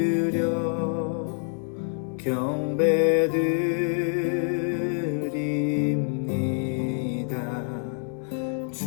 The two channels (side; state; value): right; silent; 60 dB below the other